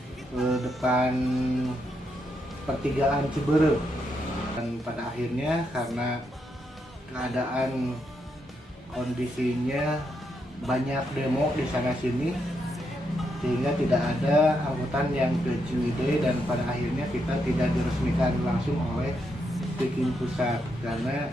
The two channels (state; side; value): normal; both; correlation 0.80